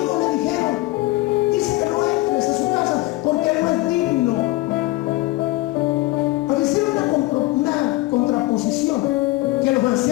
le dijeron, dice que no entres a su casa porque él no es digno. Pero hicieron una contraposición, que los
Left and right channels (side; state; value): right; quieter; 19.6 dB